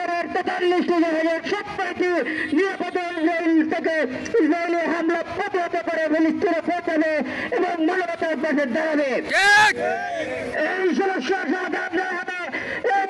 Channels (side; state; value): both; identical; correlation 1.00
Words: 43টি জাহাজের সবকটি নিরাপদ থেকে ইসরায়েলি হামলা প্রতিহত করে ফিলিস্তিনে পৌঁছাবে এবং মানবতার পাশে দাঁড়াবে। এই সমস্যা সমাধান হবে